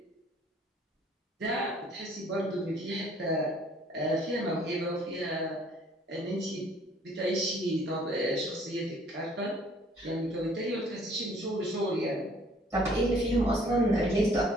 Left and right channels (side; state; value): both; normal; correlation 0.58